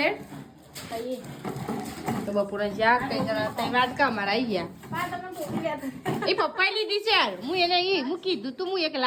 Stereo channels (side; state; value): both; identical; correlation 1.00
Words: તો બપોરનું શાક કઈ જણા તઈ વાત કા મારા આવી ગયા એ પપ્પાએ લીધી છે યાર હું એને હું કીધું તું હું એક